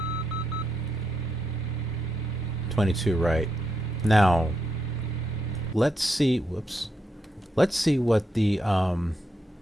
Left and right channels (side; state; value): both; normal; correlation 0.82